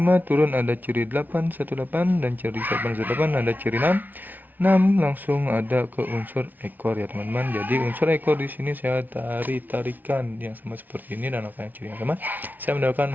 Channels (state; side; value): late; left; 0.083 ms